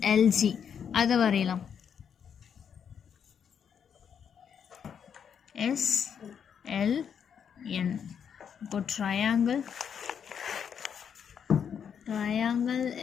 அதை வரையலாம். SLN. இப்போ ட்ரையாங்கிள்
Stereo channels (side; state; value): right; quieter; 7.7 dB